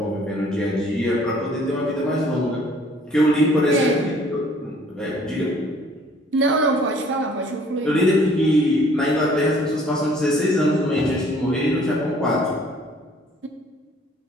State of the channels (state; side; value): normal; both; correlation 0.57